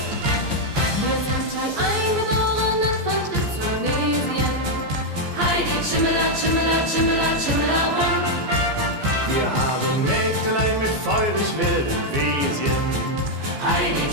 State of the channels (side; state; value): left; late; 14 ms